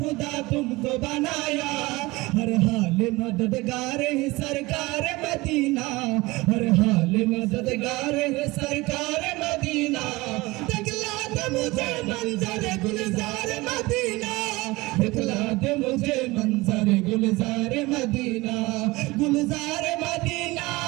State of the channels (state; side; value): quieter; left; 21.6 dB